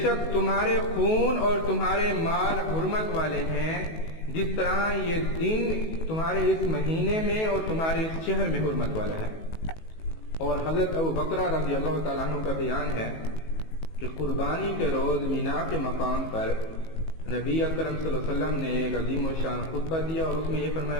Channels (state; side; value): late; right; 19 ms